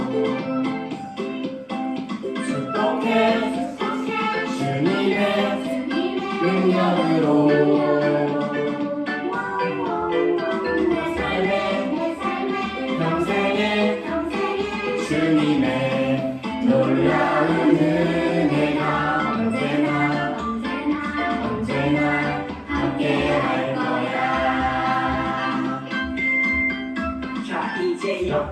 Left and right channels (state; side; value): identical; both; correlation 1.00